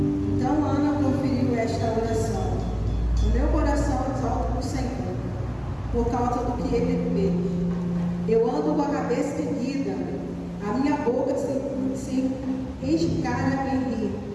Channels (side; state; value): both; identical; correlation 1.00